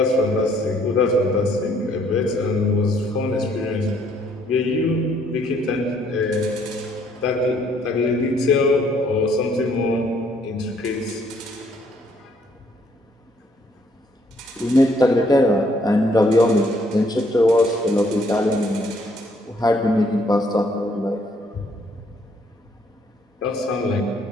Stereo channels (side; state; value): both; normal; correlation 0.66